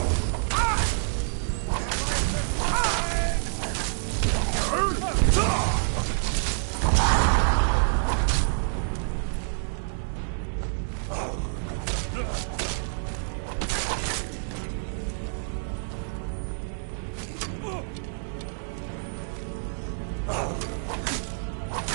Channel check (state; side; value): silent; left; digital silence